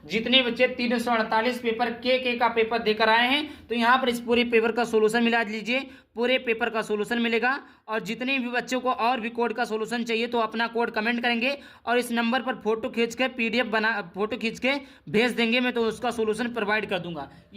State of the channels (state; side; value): identical; both; correlation 1.00